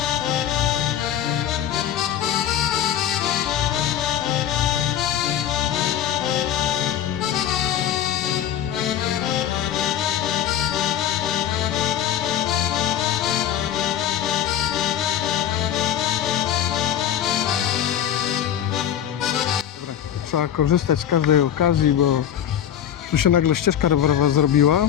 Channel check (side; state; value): right; quieter; 10.2 dB